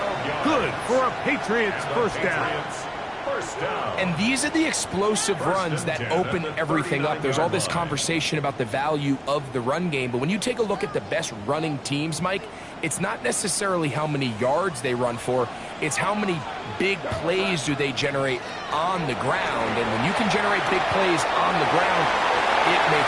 Good for a Patriots first down. And these are the explosive runs that open everything up. There's all this conversation about the value of the run game, but when you take a look at the best running teams, Mike, it's not necessarily how many yards they run for, it's how many big plays do they generate on the ground. And when you can generate big plays on the ground, it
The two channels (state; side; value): identical; both; correlation 1.00